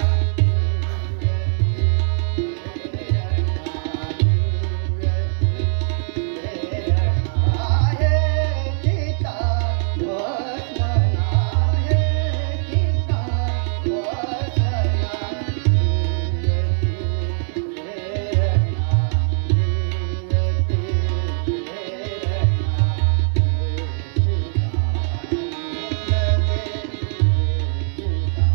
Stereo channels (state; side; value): silent; left; 65 dB below the other